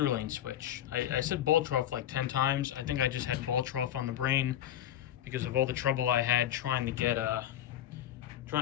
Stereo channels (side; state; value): right; quieter; 11.5 dB